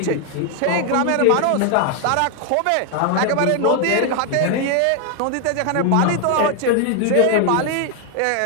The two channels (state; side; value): different; both; correlation 0.00